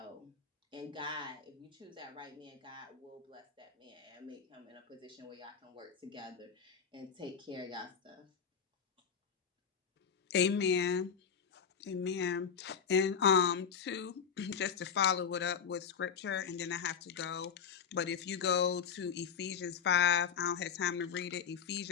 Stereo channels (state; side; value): quieter; right; 7.0 dB